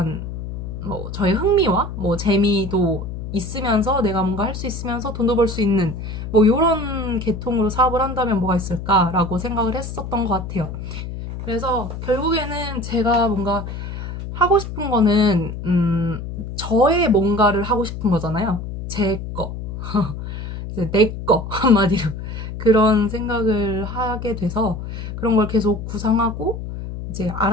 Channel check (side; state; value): left; noise; hum, 7 dB below the sound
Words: 뭐 저의 흥미와 뭐 재미도 있으면서 내가 뭔가 할 수 있으면서 돈도 벌 수 있는 뭐 이런 계통으로 사업을 한다면 뭐가 있을까라고 생각을 했었던 것 같아요. 그래서 결국에는 제가 뭔가 하고 싶은 거는 저의 뭔가를 하고 싶은 거잖아요. 제 거, 내 거 한마디로 그런 생각을 하게 돼서 그런 걸 계속 구상하고 이제